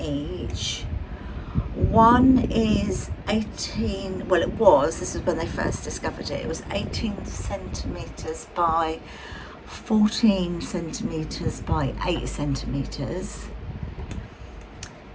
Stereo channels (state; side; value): identical; both; correlation 1.00